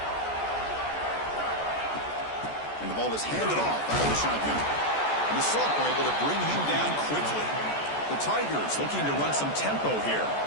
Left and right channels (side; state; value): right; late; 14 ms